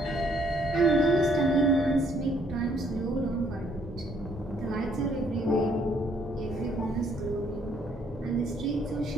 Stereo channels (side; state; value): both; normal; correlation 0.66